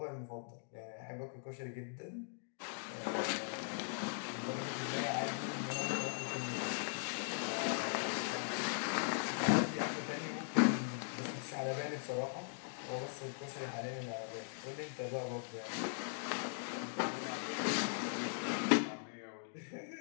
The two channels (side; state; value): right; silent; digital silence